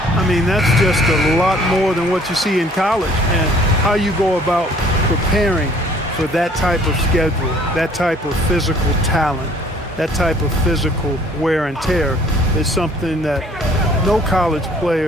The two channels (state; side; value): normal; both; correlation 0.57